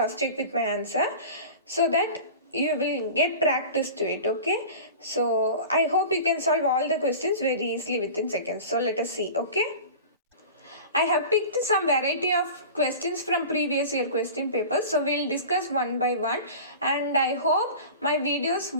check with my answer so that you will get practice to it. Okay, so I hope you can solve all the questions very easily within seconds. So let us see. Okay, I have picked some variety of questions from previous year question papers, so we'll discuss one by one, and I hope my videos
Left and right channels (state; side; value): inverted; both; correlation -0.36